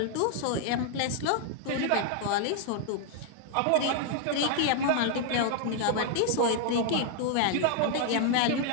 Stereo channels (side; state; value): both; different; correlation 0.00